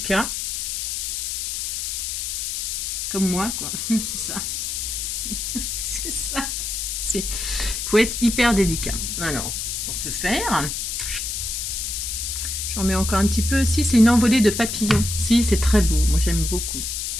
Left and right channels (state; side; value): noise; left; hiss, 3 dB below the sound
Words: comme moi, quoi. C'est ça. C'est ça. Il faut être hyper délicat. Alors, pour ce faire, j'en mets encore un petit peu. Si, c'est une envolée de papillons. Si, c'est très beau. Moi, j'aime beaucoup.